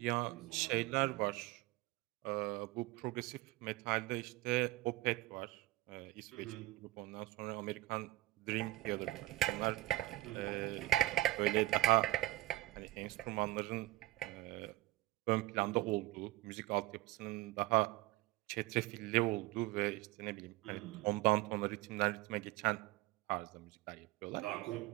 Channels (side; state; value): left; quieter; 18.3 dB